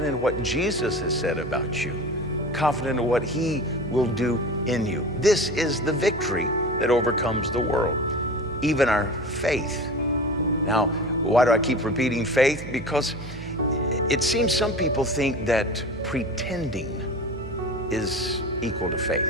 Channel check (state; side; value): noise; right; hum, 12 dB below the sound